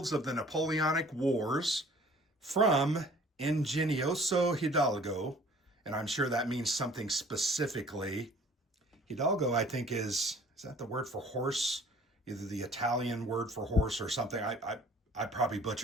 of the Napoleonic Wars from Ingenioso Hidalgo, and I'm sure that means something specifically. Hidalgo, I think, is that the word for horse? Either the Italian word for horse or something. I probably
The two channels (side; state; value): both; normal; correlation 0.52